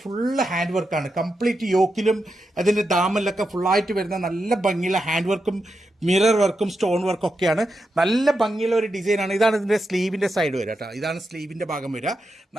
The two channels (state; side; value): normal; both; correlation 0.87